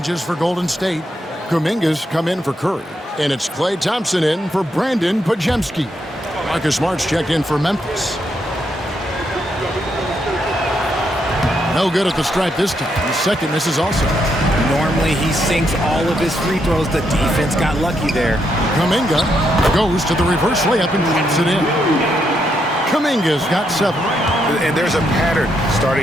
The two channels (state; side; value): normal; both; correlation 0.78